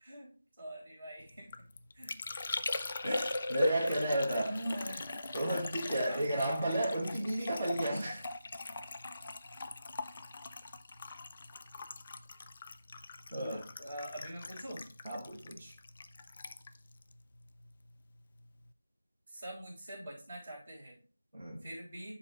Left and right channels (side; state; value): both; inverted; correlation -0.86